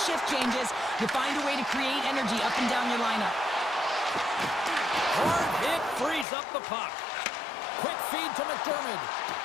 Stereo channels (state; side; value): drops out; right; at 6.2 s